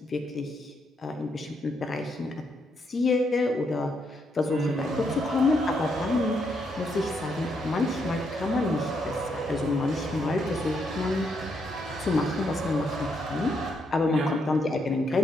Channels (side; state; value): both; normal; correlation 0.77